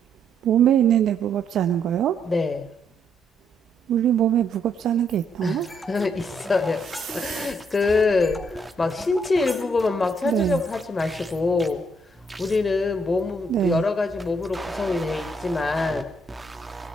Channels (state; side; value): normal; both; correlation 0.73